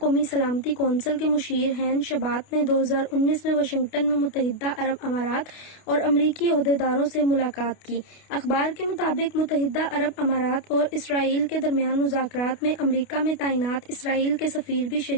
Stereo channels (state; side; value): late; right; 28 ms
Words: سلامتی کونسل کے مشیر ہین شبات نے 2019 میں واشنگٹن میں متحدہ عرب امارات اور امریکی عہدیداروں سے ملاقات کی۔ اخبار کے مطابق متحدہ عرب امارات اور اسرائیل کے درمیان مذاکرات میں امریکہ میں تعینات اسرائیل کے سفیر بھی